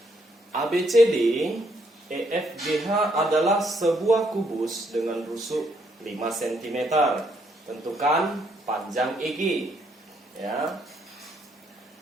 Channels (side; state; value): both; normal; correlation 0.72